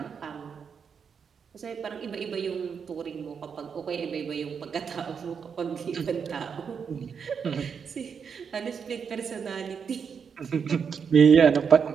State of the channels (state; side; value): quieter; left; 6.6 dB